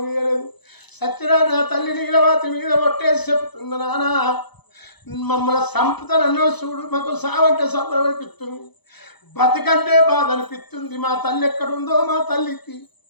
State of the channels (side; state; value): right; late; 0.99 ms